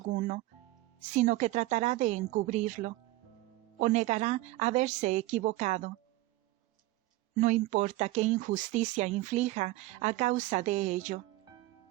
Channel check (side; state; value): left; quieter; 18.3 dB